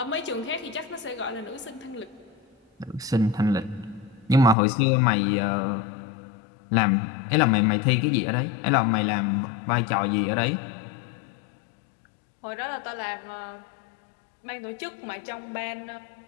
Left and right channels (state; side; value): drops out; right; at 4.5 s